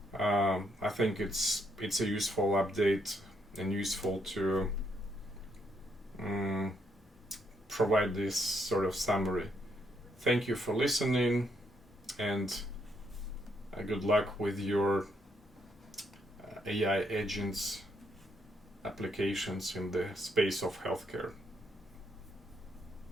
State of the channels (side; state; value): both; normal; correlation 0.74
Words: I think it's a useful update and useful to provide this sort of summary. Thank you for listening, and good luck with your AI agents applications in the space of healthcare.